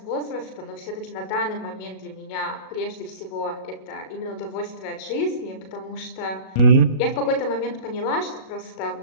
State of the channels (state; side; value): late; right; 37 ms